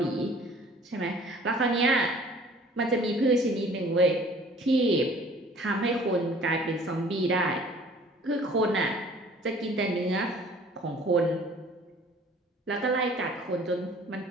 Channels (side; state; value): both; normal; correlation 0.52